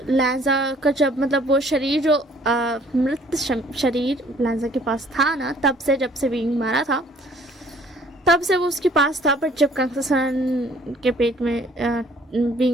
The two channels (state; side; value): normal; both; correlation 0.58